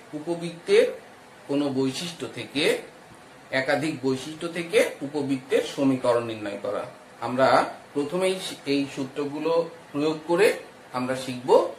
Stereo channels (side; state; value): both; identical; correlation 1.00